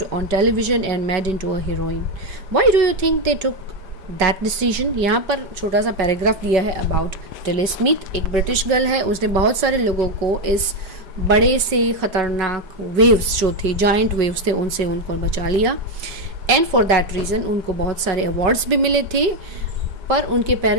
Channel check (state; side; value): late; left; 5.0 ms